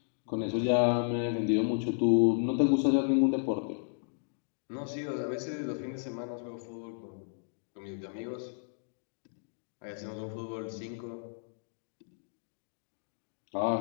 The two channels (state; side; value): silent; right; digital silence